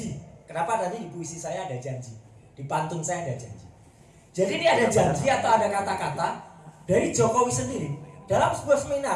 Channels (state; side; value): identical; both; correlation 1.00